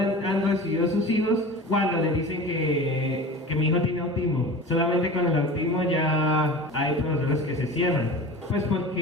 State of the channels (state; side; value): normal; both; correlation 0.35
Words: recibido a sus hijos cuando le dicen que mi hijo tiene autismo. Solamente con el autismo ya hay profesores que se cierran. Pues